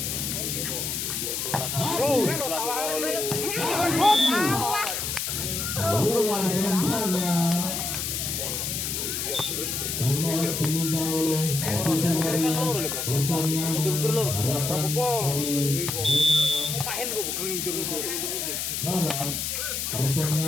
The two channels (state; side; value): noise; left; hiss, 2 dB below the sound